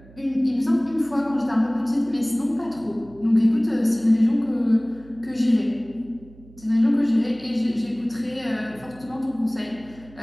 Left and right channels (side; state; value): right; noise; hum, 23 dB below the sound